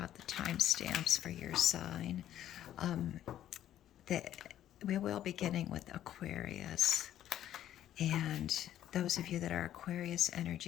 out the timestamps for your sign. We will be beginning with Aquarius. And those of you that are Aquarius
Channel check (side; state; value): right; quieter; 11.7 dB